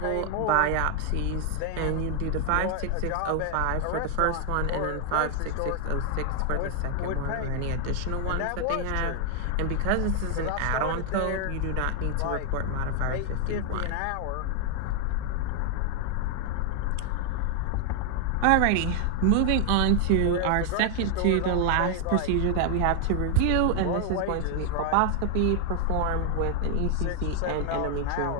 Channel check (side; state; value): both; different; correlation 0.00